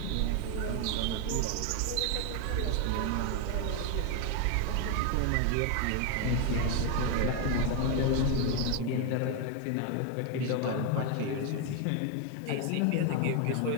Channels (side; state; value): both; different; correlation 0.01